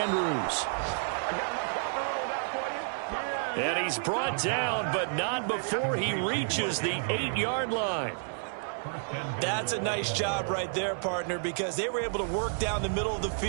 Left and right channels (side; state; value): left; silent; digital silence